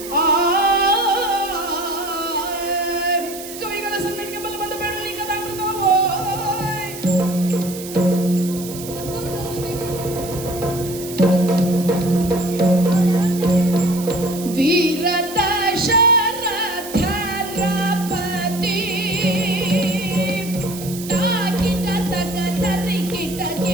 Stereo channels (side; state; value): right; noise; hiss, 12 dB below the sound